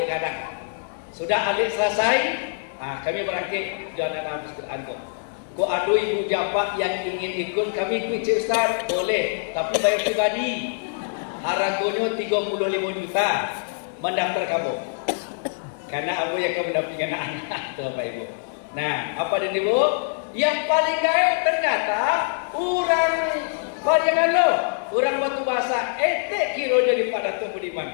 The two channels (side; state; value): right; silent; 62 dB below the other